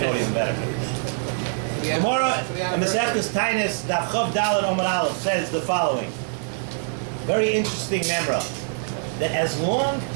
even better. Gemara in S.S.S. Tainus Daf Chav Daled Omar Aleph says the following. Very interesting memra. That as long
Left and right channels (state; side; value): silent; left; digital silence